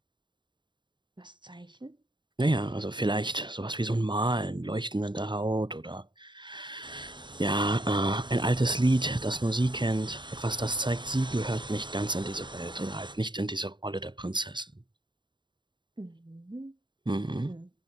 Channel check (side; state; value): left; late; 0.22 ms